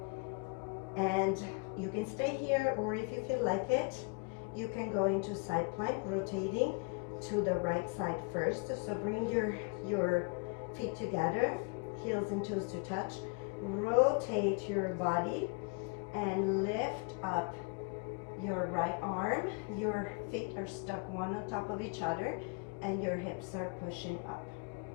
And you can stay here, or if you feel like it, you can go into side plank, rotating to the right side first. So bring your feet together, heels and toes to touch. Rotate your body and lift up your right arm. Your feet are stuck one on top of each other and your hips are pushing up.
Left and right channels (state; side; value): quieter; right; 31.6 dB